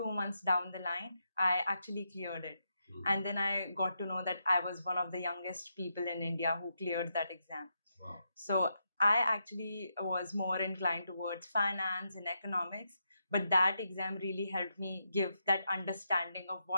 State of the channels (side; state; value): both; inverted; correlation -0.83